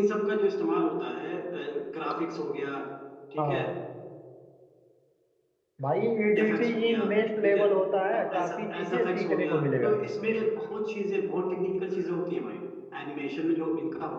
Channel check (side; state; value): both; identical; correlation 1.00